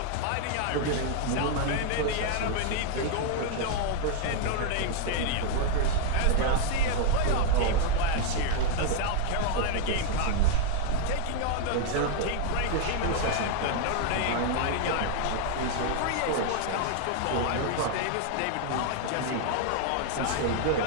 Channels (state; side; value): different; both; correlation 0.00